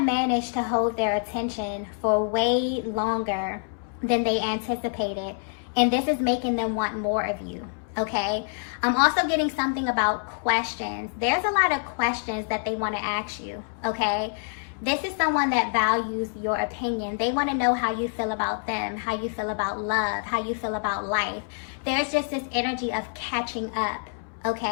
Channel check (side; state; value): right; silent; 61 dB below the other